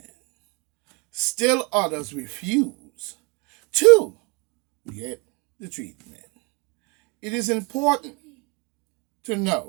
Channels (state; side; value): quieter; left; 30.3 dB